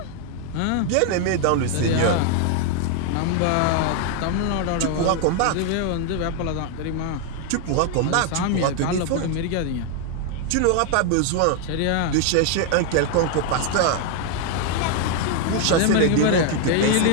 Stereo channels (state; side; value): different; both; correlation 0.00